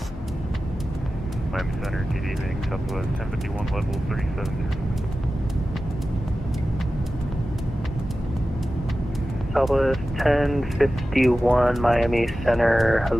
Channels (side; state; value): both; normal; correlation 0.94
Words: Miami Center, TD being Southwest 1051 level 370. Southwest 1051 Miami Center,